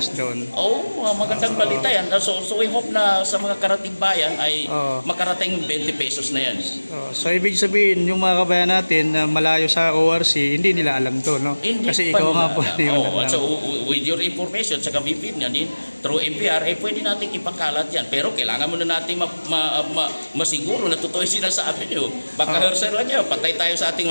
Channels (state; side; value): inverted; both; correlation -1.00